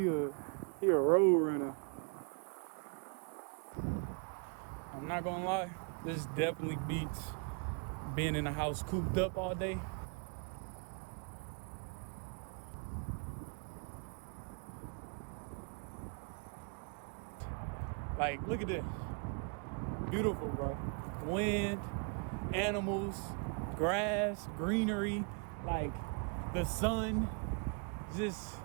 a road runner. I'm not gonna lie, this definitely beats being in the house cooped up all day. Like, look at this. Beautiful, bro. Wind, animals, grass, greenery, like the sun. Just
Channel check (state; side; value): quieter; left; 37.7 dB